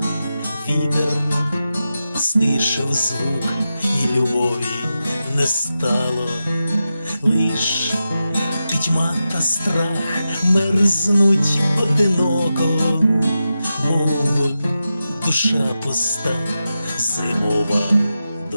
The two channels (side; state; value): both; inverted; correlation -0.90